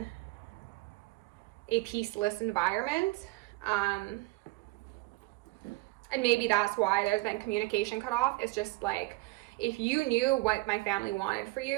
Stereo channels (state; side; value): quieter; left; 21.6 dB